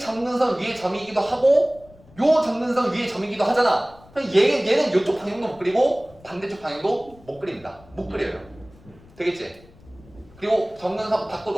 위에 점이기도 하고 요 정근선 위에 점이기도 하잖아. 그럼 얘는 이쪽 방향도 못 그리고 반대쪽 방향도 못 그립니다. 못 그려요. 되겠지? 그리고 정근선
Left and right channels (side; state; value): left; noise; rumble, 25 dB below the sound